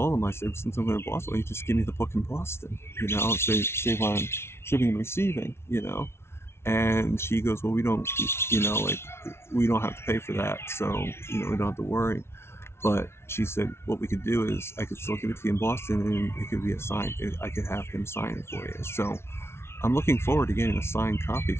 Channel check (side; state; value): right; late; 0.12 ms